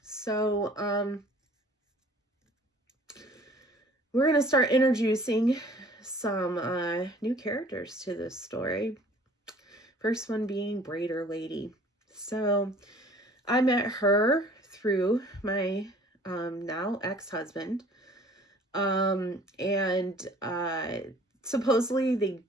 We're going to start introducing some new characters to this story. First one being Braider Lady. So I met her through my now ex-husband. Supposedly they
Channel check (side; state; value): both; normal; correlation 0.52